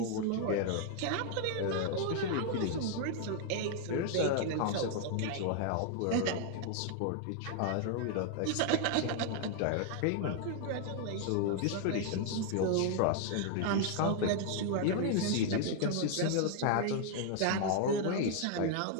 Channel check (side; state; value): both; different; correlation 0.00